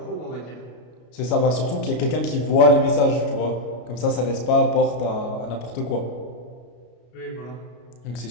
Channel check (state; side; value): late; right; 33 ms